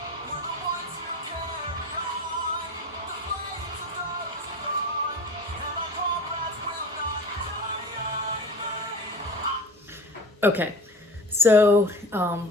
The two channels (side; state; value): both; normal; correlation 0.35